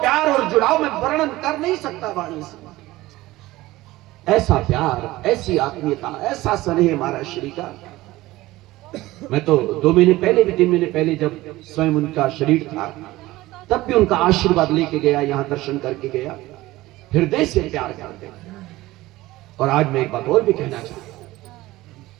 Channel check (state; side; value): quieter; left; 18.0 dB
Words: प्यार और जुड़ाव में वर्णन कर नहीं सकता वाणी से। ऐसा प्यार, ऐसी आत्मीयता, ऐसा स्नेह महाराज श्री का। मैं तो 2 महीने पहले भी, 3 महीने पहले जब स्वयं उनका शरीर था, तब भी उनका आशीर्वाद लेके गया, यहां दर्शन करके गया, हृदय से प्यार करते। और आज मैं एक बात और भी कहना चाहता हूं